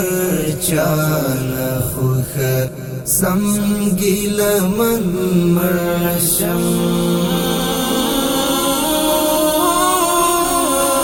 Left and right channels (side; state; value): both; identical; correlation 1.00